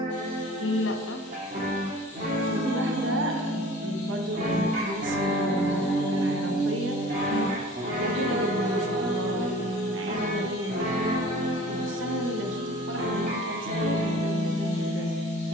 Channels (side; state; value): both; normal; correlation 0.46